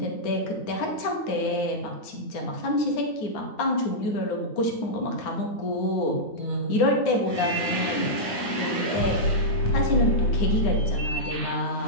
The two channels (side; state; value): right; late; 9.6 ms